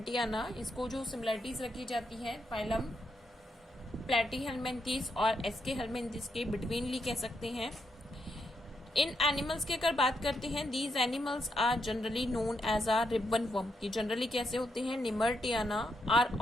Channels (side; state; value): both; normal; correlation 0.81